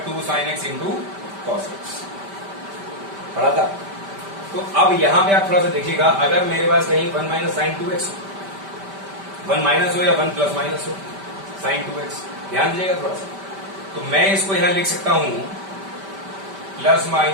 2 sine x into cos x, पढ़ा था। तो अब यहां पे आप थोड़ा सा देखिएगा, अगर मेरे पास कहीं 1 माइनस साइन 2x हो, 1 माइनस हो या 1 प्लस माइनस हो साइन 2x, ध्यान दीजिएगा थोड़ा सा, तो मैं इसको यहां लिख सकता हूं plus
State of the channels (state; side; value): late; left; 5.1 ms